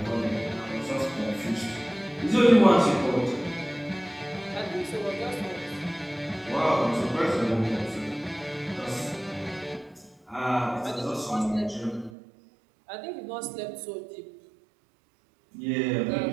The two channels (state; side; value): drops out; left; at 12.2 s